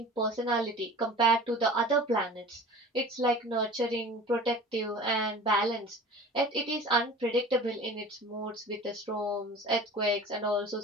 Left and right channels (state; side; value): normal; both; correlation 0.40